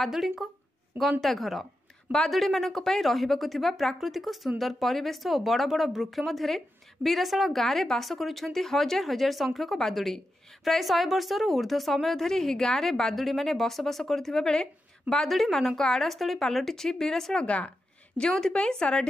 गंता घर। बादुड़ी मानक पई रहिबाकु थिबा प्राकृतिक सुंदर परिवेश और बड़ बड़ वृक्ष मध्य बीराशाल गाँव में बास करुछंती हजार हजार संख्यक बादुड़ी। प्राय 100 वर्षर ऊर्ध्व समय धरी ही गाँव में बादुड़ी माने बसवास करुथिबा बेले बादुड़ी मानक आड़ास्थली पलटि बीराशाल गाँ, जोंथिपई सारा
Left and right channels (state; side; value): normal; both; correlation 0.89